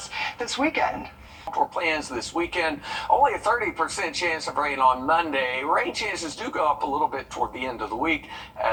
this weekend? For plans this weekend, only a 30% chance of rain on Monday. Rain chances do go up a little bit toward the end of the week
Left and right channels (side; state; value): both; identical; correlation 1.00